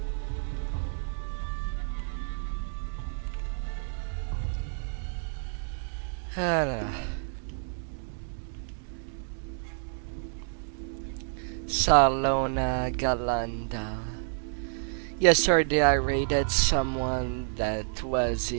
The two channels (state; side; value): silent; left; digital silence